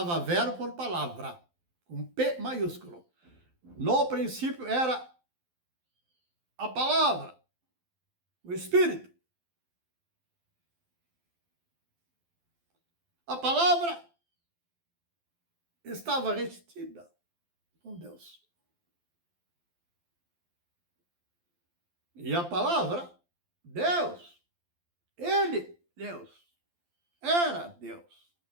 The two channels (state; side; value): late; left; 12 ms